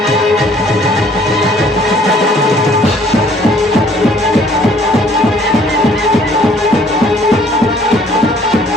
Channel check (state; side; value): normal; both; correlation 0.58